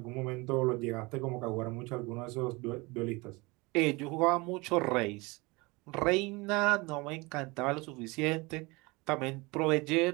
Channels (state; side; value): quieter; left; 25.0 dB